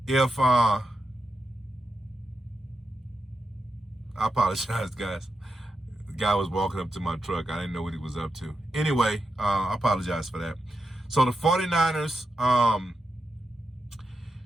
if I apologize, guys. The guy was walking up to my truck. I didn't know what he was up to. Anyway, I apologize for that. So the 49ers,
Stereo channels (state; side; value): normal; both; correlation 0.87